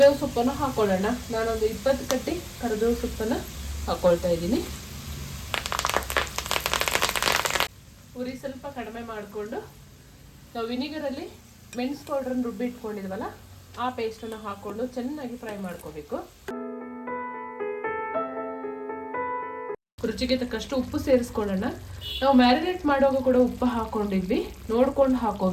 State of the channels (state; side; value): identical; both; correlation 1.00